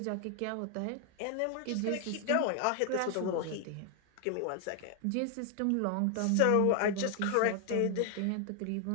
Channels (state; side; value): different; both; correlation 0.00